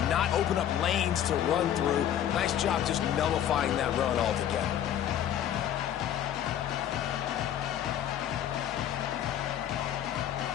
not open up lanes to run through. Nice job just nullifying that run altogether.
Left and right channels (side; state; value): right; quieter; 10.5 dB